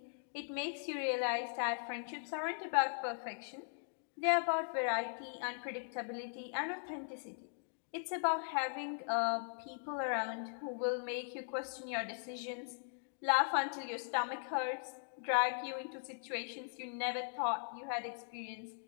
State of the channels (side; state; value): right; silent; digital silence